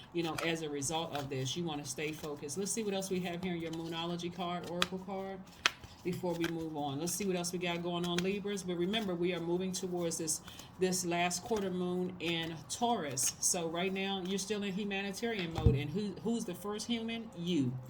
as a result of this. You want to stay focused. Let's see what else we have here in your Moonology card, Oracle card, before we move on. Let's see what else we got going on, Libras. But remember, we are moving towards this last quarter moon in Taurus. So right now, you're still in humanitarian mode. And who's the first human? You,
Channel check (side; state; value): both; identical; correlation 1.00